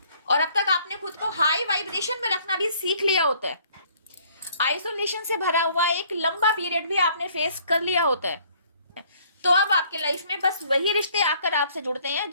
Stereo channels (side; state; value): both; inverted; correlation -0.59